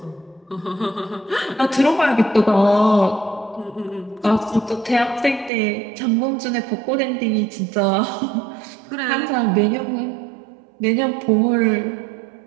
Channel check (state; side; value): drops out; left; at 5.5 s